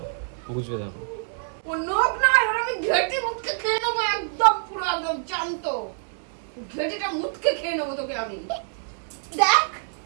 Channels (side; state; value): left; silent; 61 dB below the other